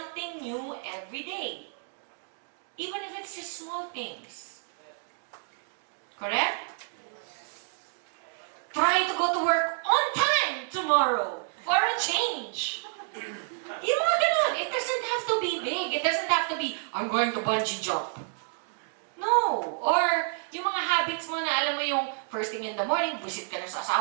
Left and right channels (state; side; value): silent; left; 58 dB below the other